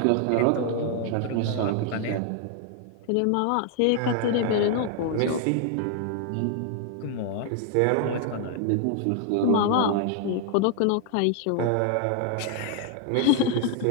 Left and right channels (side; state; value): both; different; correlation 0.00